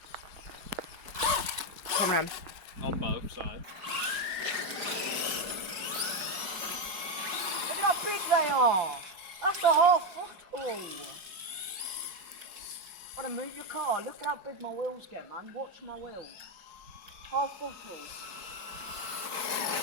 Come on. On both sides. Look at how big they are! That's a half football! Gotta move your car. Look at how big my wheels get, man. Watch my wheels. Half football.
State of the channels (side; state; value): left; late; 5.5 ms